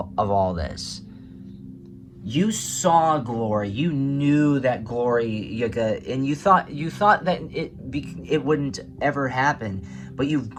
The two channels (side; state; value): both; identical; correlation 1.00